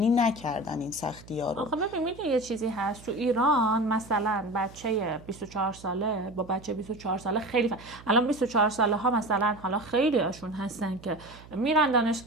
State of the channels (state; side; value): noise; right; hum, 20 dB below the sound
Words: نکردن، این سختی‌ها رو. آخه ببین میدونی یه چیزی هست تو ایران، مثلا بچه 24 ساله با بچه 24 ساله خیلی الان 24 ساله ها مثلا حالا خیلی هاشون هستن که میرن